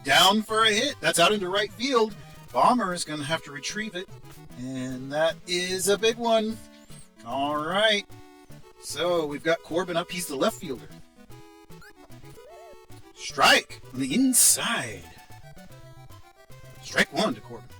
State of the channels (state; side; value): identical; both; correlation 1.00